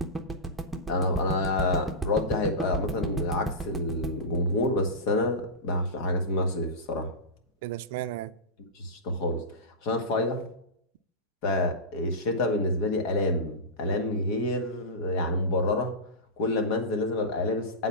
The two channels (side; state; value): both; normal; correlation -0.18